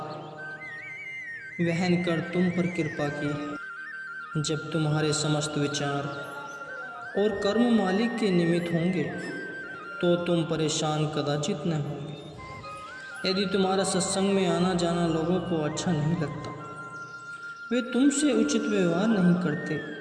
वहन कर तुम पर कृपा की है। जब तुम्हारे समस्त विचार और कर्म मालिक के निमित्त होंगे तो तुम परेशान कदाचित न होंगे। यदि तुम्हारा सत्संग में आना जाना लोगों को अच्छा नहीं लगता, वे तुमसे उचित व्यवहार नहीं करते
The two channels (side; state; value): both; identical; correlation 1.00